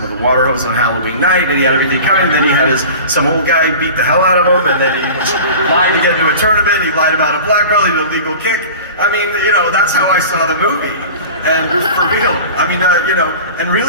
with a water hose on Halloween night, and he had everything coming. Then he had some old guy beat the hell out of him, and then he lied to get into a tournament. He lied about a black belt, he did a legal kick. I mean, you know, that's how I saw the movie. And for real, I mean, you know, and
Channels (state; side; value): inverted; both; correlation -0.38